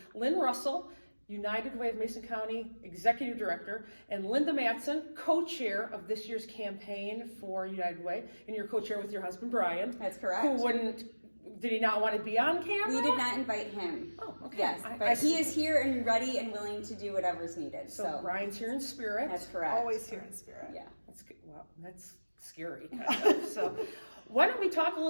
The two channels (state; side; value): inverted; both; correlation -1.00